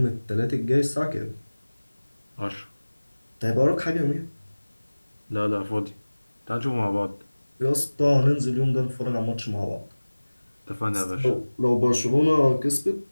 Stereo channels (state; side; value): inverted; both; correlation -1.00